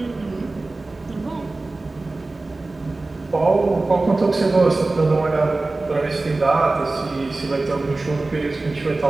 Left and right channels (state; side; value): quieter; left; 3.2 dB